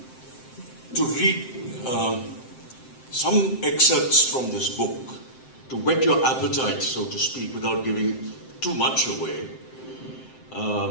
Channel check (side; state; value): right; late; 7.7 ms